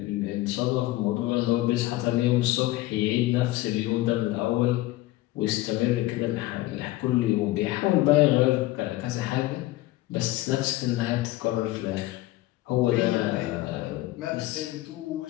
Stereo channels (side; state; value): right; quieter; 17.4 dB